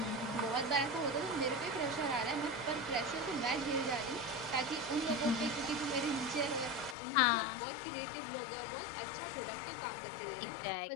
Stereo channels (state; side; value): drops out; right; at 7.0 s